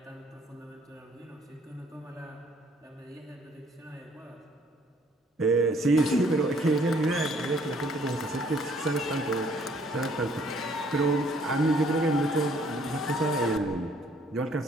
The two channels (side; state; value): both; normal; correlation 0.62